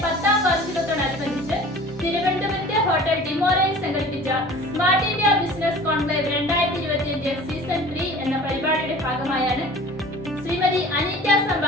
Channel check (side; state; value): both; normal; correlation 0.43